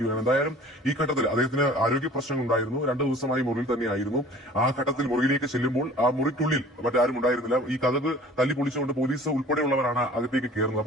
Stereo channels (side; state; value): both; normal; correlation 0.47